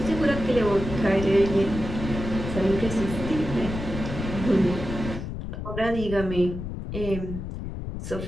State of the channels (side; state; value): left; noise; rumble, 6 dB below the sound